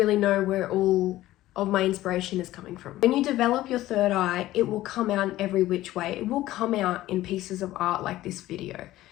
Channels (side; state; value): right; quieter; 15.6 dB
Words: know where all of my inspiration is coming from. When you develop your third eye, it will come out in every which way. It will come out in pieces of art like this video.